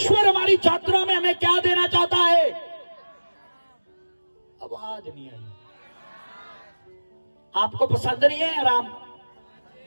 हमारी यात्रा में हमें क्या देना चाहता है? आवाज नहीं आई। आपको पसंद नहीं है आराम?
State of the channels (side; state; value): both; inverted; correlation -1.00